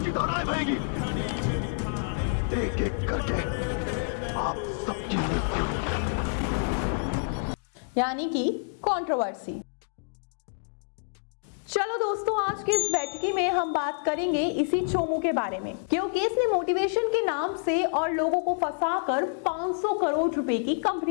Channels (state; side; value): silent; right; digital silence